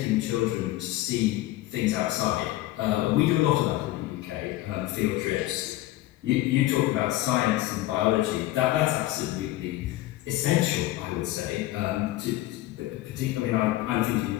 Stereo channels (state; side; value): quieter; right; 16.3 dB